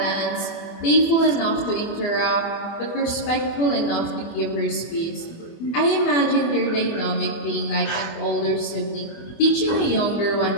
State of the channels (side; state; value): right; late; 24 ms